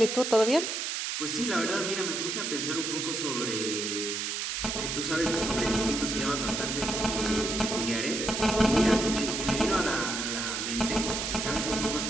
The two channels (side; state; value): right; noise; hiss, 2 dB below the sound